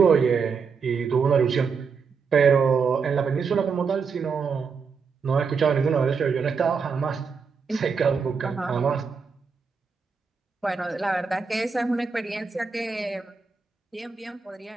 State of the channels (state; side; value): quieter; left; 5.5 dB